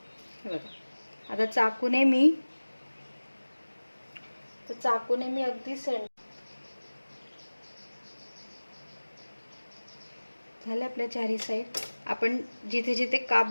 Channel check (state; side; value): inverted; both; correlation -1.00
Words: हे बघा, आता चाकूने मी अगदी झाले आपल्या चारही साईड. आपण जिथे जिथे काप